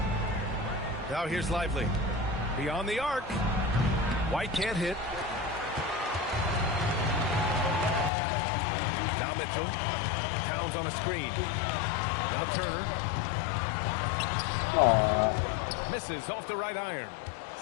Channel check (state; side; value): drops out; right; at 8.1 s